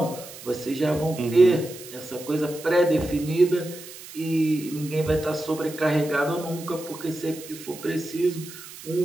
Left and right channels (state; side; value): noise; right; hiss, 15 dB below the sound